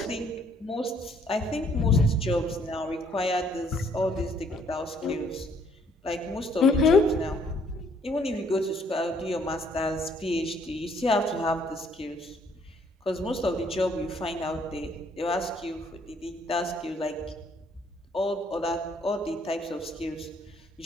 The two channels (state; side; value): normal; both; correlation 0.65